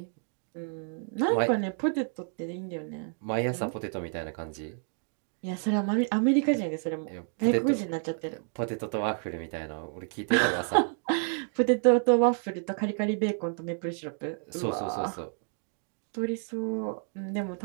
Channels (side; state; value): left; silent; 58 dB below the other